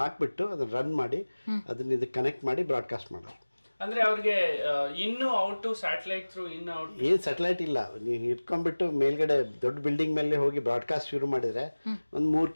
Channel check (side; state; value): both; inverted; correlation -1.00